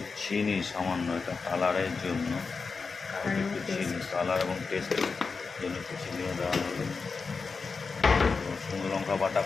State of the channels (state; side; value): quieter; right; 4.7 dB